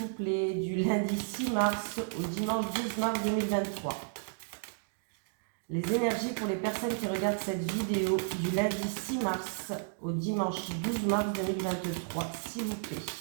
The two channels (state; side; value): silent; left; digital silence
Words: plaît, du lundi 6 mars au dimanche 12 mars 2023. Les énergies pour les personnes qui regardent cette vidéo du lundi 6 mars au dimanche 12 mars 2023, s'il vous plaît.